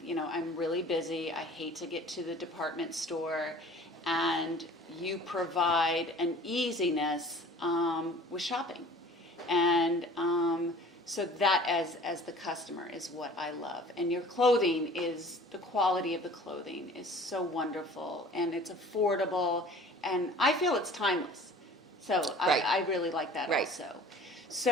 I'm really busy. I hate to get to the department store, and you provide an easiness with shopping. And so that as the customer is what I love. And your clothing the quality of the clothing is so wonderful, and it's affordable, and I feel it's timeless. So I really like that also.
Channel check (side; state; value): both; normal; correlation 0.46